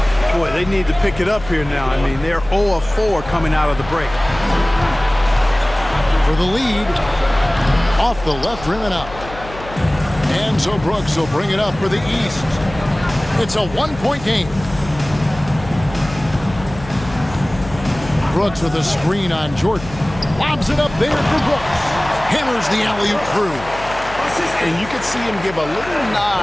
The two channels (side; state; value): left; noise; hum, 15 dB below the sound